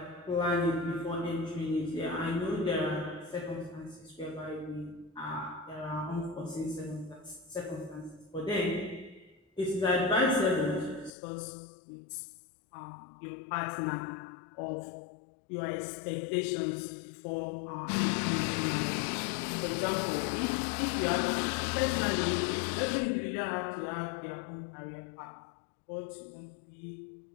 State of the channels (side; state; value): right; drops out; at 11.1 s